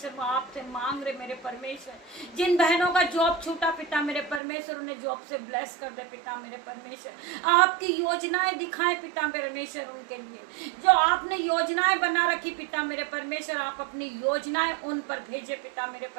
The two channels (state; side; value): drops out; left; at 4.4 s